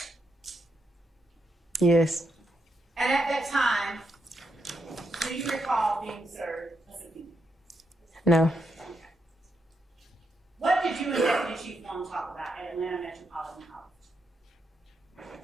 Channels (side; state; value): both; normal; correlation 0.82